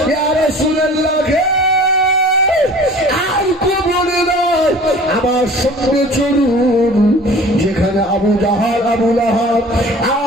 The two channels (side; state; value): both; normal; correlation 0.45